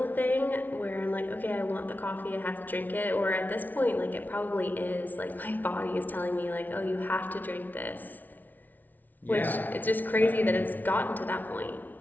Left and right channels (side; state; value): right; late; 0.082 ms